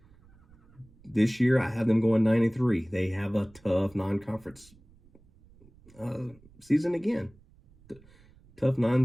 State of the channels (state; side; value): noise; right; rumble, 27 dB below the sound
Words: This year, I have them going 9-3. They have a tough non-conference season again. Tough